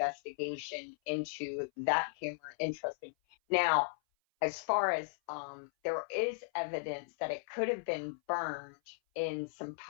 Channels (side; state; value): right; silent; 54 dB below the other